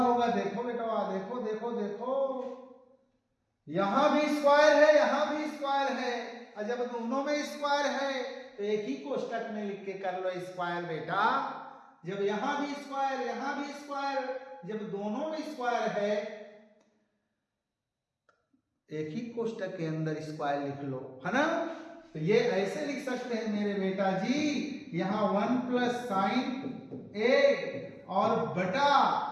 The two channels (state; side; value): identical; both; correlation 1.00